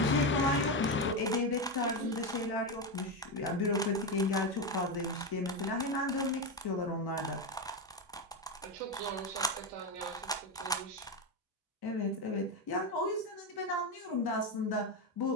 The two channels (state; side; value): normal; both; correlation 0.12